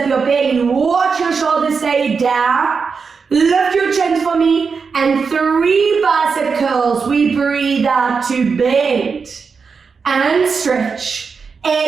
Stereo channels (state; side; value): quieter; left; 5.3 dB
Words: your belly, watch your shoulders stay down, lift your chin for me, and 3 bicep curls. We breathe out to bend and stretch.